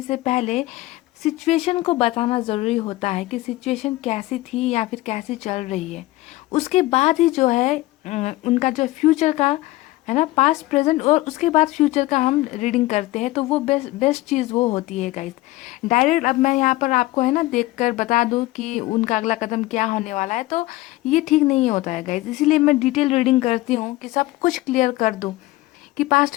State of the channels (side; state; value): right; quieter; 18.4 dB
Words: से पहले सिचुएशन को बताना ज़रूरी होता है कि सिचुएशन कैसी थी या फिर कैसी चल रही है। उसके बाद ही जो है उनका जो फ्यूचर का, है ना, पास्ट, प्रेजेंट और उसके बाद फ्यूचर का हम रीडिंग करते हैं, तो वो बेस्ट चीज़ वो होती है गाइस। डायरेक्ट अब मैं यहाँ पर आपको, है ना, देखकर बता दूँ कि उनका अगला कदम क्या होने वाला है, तो ये ठीक नहीं होता है गाइस। इसीलिए मैं डिटेल रीडिंग करती हूँ कि सब कुछ क्लियर कर दूँ कि पास्ट